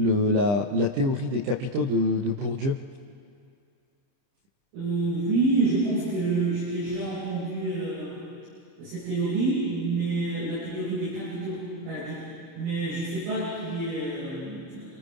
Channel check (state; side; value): late; left; 30 ms